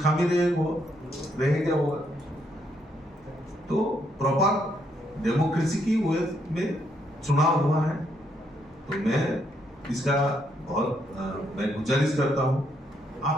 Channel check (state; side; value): normal; both; correlation 0.74